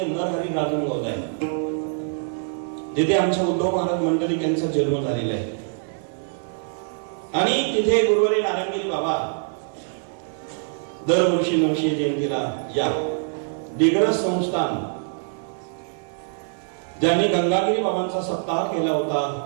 नरहरी राजनगाव आहे, जिथे आमच्या उद्धव महाराज मंडलिक यांचा जन्म झालेला आहे. आणि तिथे गुरुवारी नारायणगिरी बाबा दरवर्षी 900 जयंतीला या दिग्रस संस्थान ज्यांनी गंगागिरी बाबांचा सप्ताह केला होता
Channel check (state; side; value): silent; left; 63 dB below the other